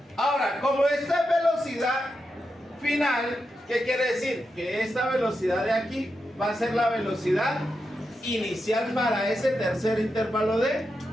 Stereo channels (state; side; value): normal; both; correlation 0.87